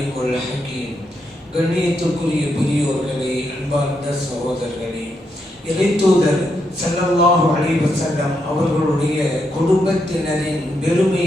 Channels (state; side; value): normal; both; correlation 0.81